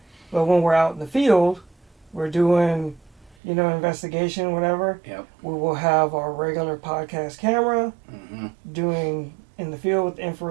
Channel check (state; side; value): drops out; left; at 3.4 s